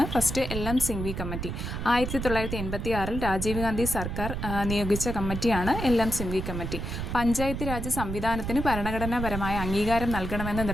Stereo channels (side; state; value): right; noise; rumble, 5 dB below the sound